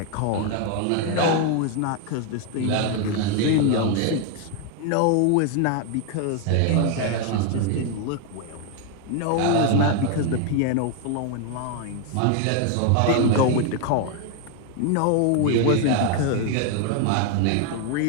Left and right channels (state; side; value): different; both; correlation 0.00